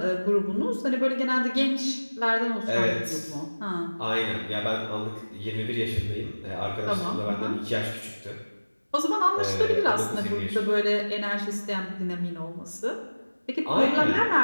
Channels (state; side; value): inverted; both; correlation -1.00